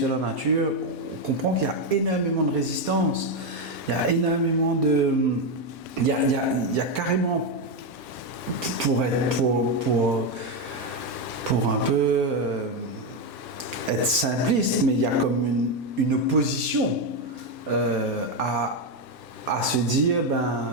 la nature, on comprend qu'il y a énormément de résistance, il y a énormément de... Il y a carrément, pour un peu être simpliste, mais il y a comme une opposition à se dire,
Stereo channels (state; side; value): normal; both; correlation 0.07